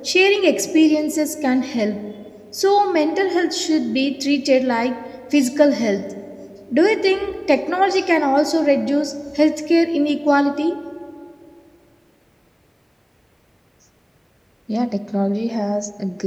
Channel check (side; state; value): both; identical; correlation 1.00